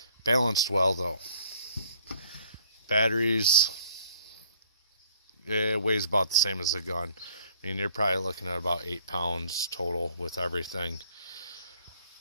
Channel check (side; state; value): both; inverted; correlation -0.58